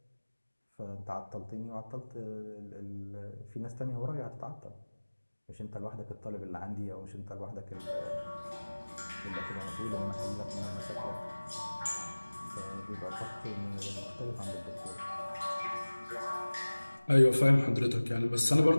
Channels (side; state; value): both; inverted; correlation -1.00